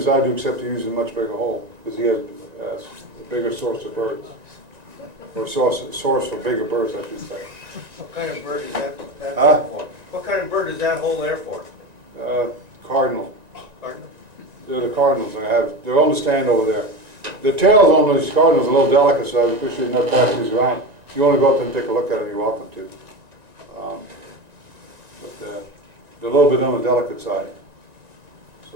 I do, except he uses a much bigger hole, because he has a bigger source of birds. Or source for bigger birds, I should say. What kind of bird is that Huh? for? What kind of bird is that hole there for? Cardinal. Cardinal? They're the cardinals, they're on the stand over there. The tails on these cardinals are a little delicate, so I appreciate not passing these around. If you want to go up and take a look at them, you're welcome to. But they're a little bit on the delicate side,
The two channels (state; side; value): late; left; 1.9 ms